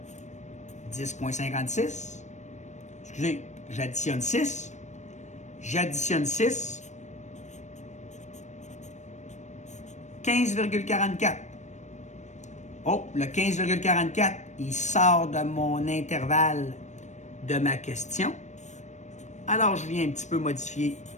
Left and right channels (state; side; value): late; right; 0.34 ms